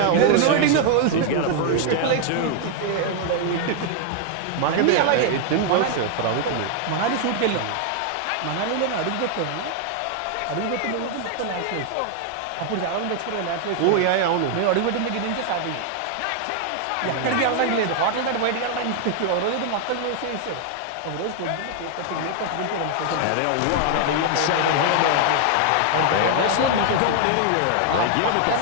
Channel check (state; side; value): different; both; correlation 0.00